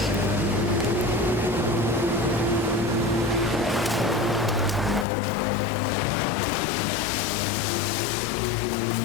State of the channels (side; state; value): right; drops out; at 5.1 s